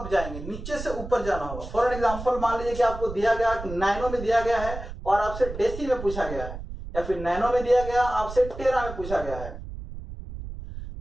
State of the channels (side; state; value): right; noise; rumble, 10 dB below the sound